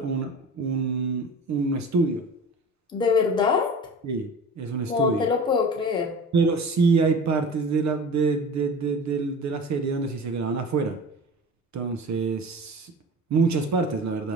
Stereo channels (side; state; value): both; normal; correlation 0.36